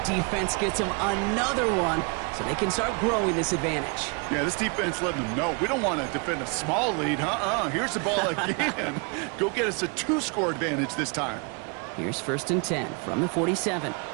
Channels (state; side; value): quieter; left; 33.8 dB